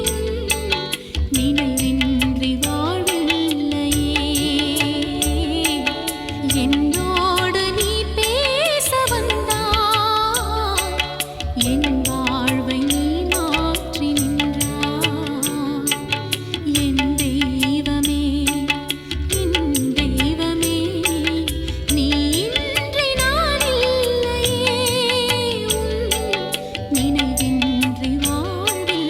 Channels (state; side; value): identical; both; correlation 1.00